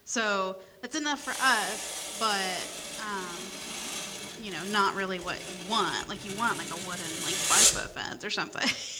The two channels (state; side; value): identical; both; correlation 1.00